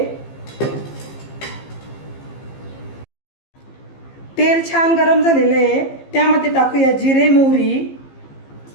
तेल छान गरम झालेलं आहे, त्यामध्ये टाकूया जिरे, मोहरी,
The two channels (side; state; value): right; late; 15 ms